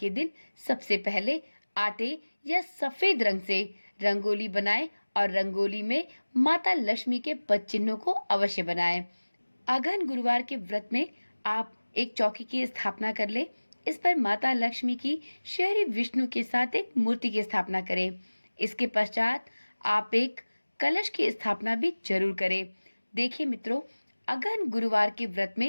दिन सबसे पहले आटे या सफेद रंग से रंगोली बनाएं और रंगोली में माता लक्ष्मी के पद चिन्हों को अवश्य बनाएं। अगहन गुरुवार के व्रत में आप एक चौकी की स्थापना कर ले। इस पर माता लक्ष्मी की श्री विष्णु के साथ एक मूर्ति की स्थापना करें। इसके पश्चात आप एक कलश की स्थापना भी जरूर करें। देखिए मित्रों, अगहन गुरुवार के व्रत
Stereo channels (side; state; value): both; inverted; correlation -1.00